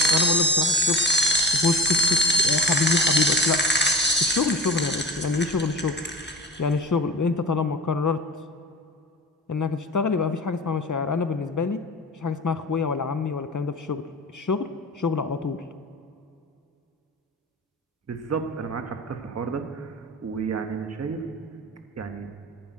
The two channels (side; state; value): both; normal; correlation 0.34